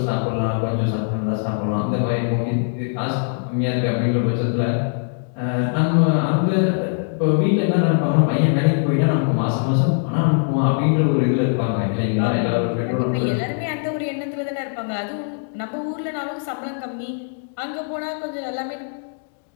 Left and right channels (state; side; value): silent; right; digital silence